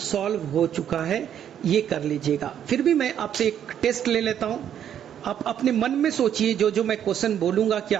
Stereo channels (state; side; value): quieter; left; 9.6 dB